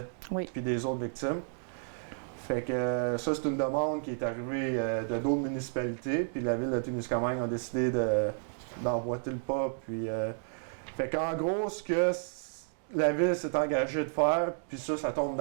Oui. Puis des autres victimes. Fait que ça, c'est une demande qui est arrivée de d'autres municipalités. Puis la Ville de Témiscamingue a décidé d'emboîter le pas. Puis, fait qu'en gros, ce que la Ville s'est engagée de faire, puis ça tombe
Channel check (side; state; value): left; silent; digital silence